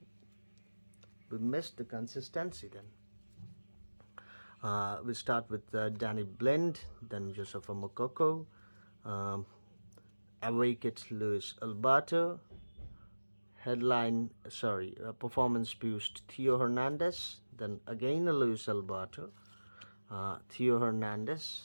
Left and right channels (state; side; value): inverted; both; correlation -1.00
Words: we missed the consistency then. We start with Danny Blind, then Josefa Mokoko, Awaked Luis Alberto, performance boost Theo Hernandez, then again a Luis Alberto, Theo